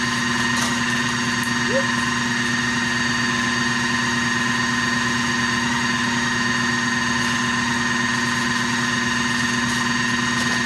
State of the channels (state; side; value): identical; both; correlation 1.00